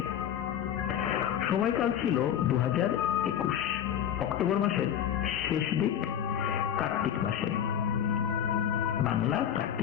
সময়কাল ছিল 2021 অক্টোবর মাসের শেষ দিক, কার্তিক মাসে, বাংলা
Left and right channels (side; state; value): right; quieter; 9.7 dB